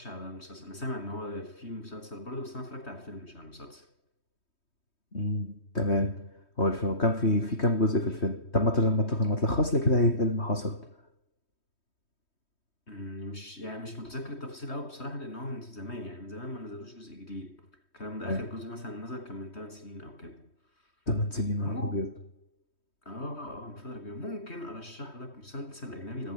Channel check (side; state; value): right; late; 3.2 ms